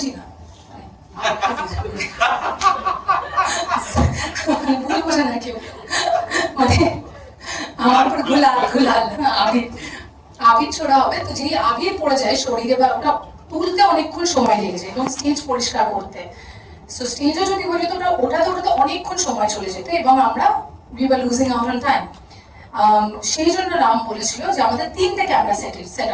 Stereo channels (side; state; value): both; identical; correlation 1.00